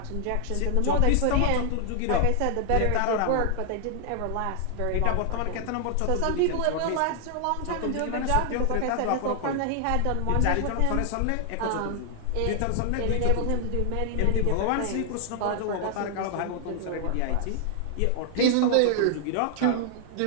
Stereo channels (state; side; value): different; both; correlation 0.00